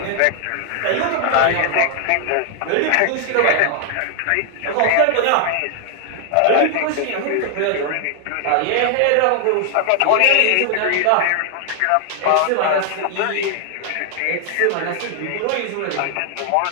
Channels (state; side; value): different; both; correlation 0.00